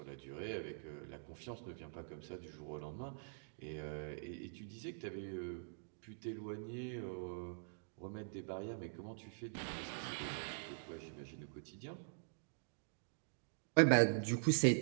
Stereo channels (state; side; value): silent; left; digital silence